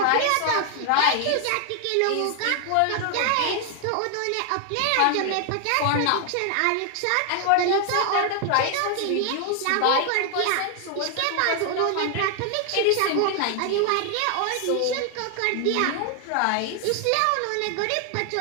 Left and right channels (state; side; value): different; both; correlation 0.00